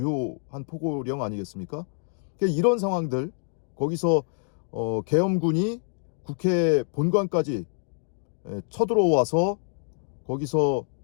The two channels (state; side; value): silent; right; 61 dB below the other